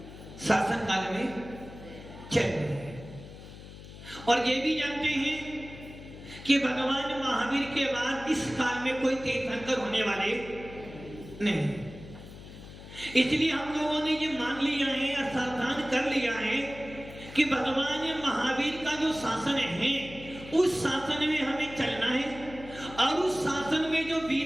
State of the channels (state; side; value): noise; left; hum, 15 dB below the sound